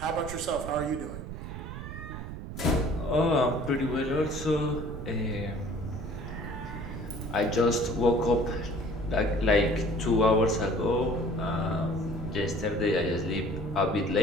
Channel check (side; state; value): right; noise; rumble, 8 dB below the sound